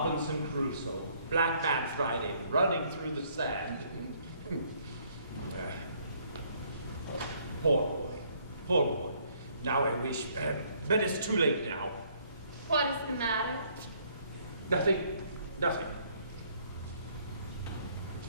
Crusoe, Black Man Friday, running through the sand. Poor boy. Now I wish, but it's too late now. What is the matter? Nothing.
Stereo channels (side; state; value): both; inverted; correlation -0.65